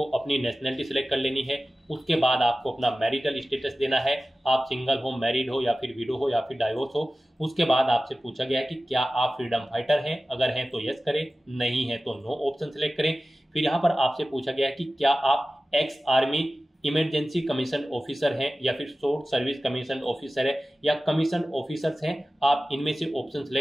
अपनी नेशनलिटी सिलेक्ट कर लेनी है। उसके बाद आपको अपना मैरिटल स्टेटस देना है, आप सिंगल हो, मैरिड हो या फिर विडो हो या फिर डाइवोर्स हो। उसके बाद आपसे पूछा गया है कि क्या आप फ्रीडम फाइटर हैं, अगर हैं तो यस करें, नहीं है तो नो ऑप्शन सिलेक्ट करें। फिर यहाँ पर आपसे पूछा गया है कि क्या आप ex army emergency commission officer हैं या फिर शॉर्ट सर्विस कमीशन ऑफिसर है या कमीशन ऑफिसर्स हैं, आप इनमें से ऑप्शन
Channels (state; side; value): normal; both; correlation 0.96